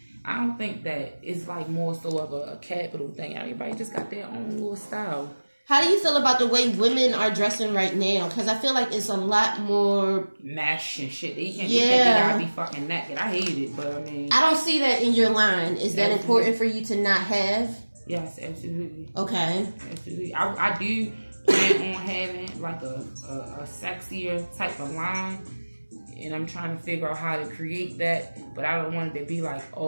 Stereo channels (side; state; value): both; inverted; correlation -1.00